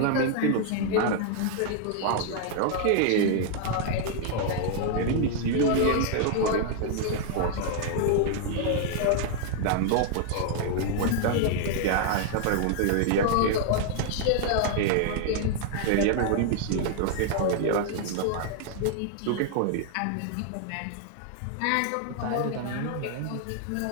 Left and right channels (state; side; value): different; both; correlation 0.00